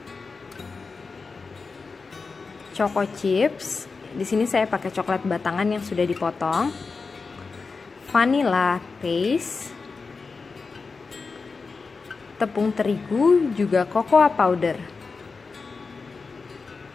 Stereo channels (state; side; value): quieter; right; 4.5 dB